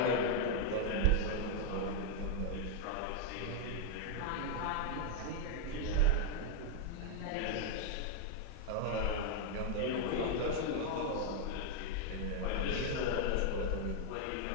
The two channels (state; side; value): different; both; correlation 0.00